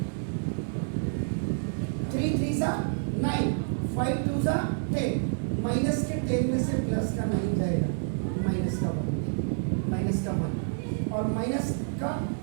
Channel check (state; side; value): silent; left; digital silence